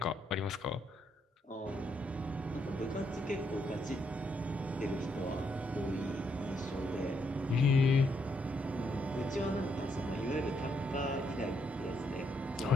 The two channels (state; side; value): normal; both; correlation 0.76